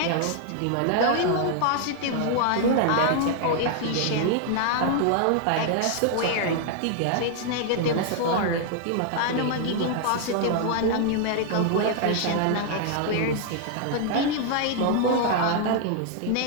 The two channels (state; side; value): different; both; correlation 0.00